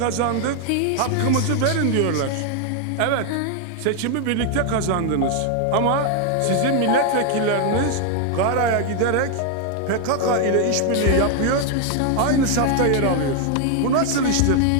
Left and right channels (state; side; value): different; both; correlation 0.00